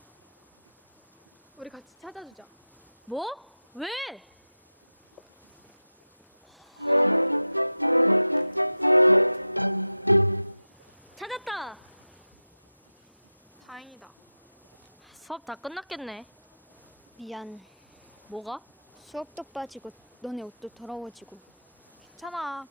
우리 같이 찾아주자. 뭐? 왜? 찾았다. 다행이다. 수업 다 끝났겠네. 미안. 뭐가? 수업도 빠지고 너네 옷도 더러워지고 괜찮아.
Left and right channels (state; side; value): inverted; both; correlation -0.89